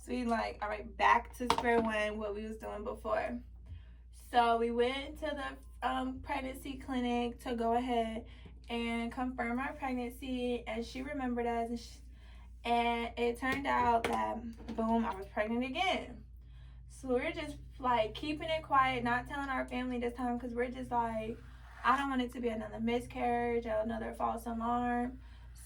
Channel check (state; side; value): identical; both; correlation 1.00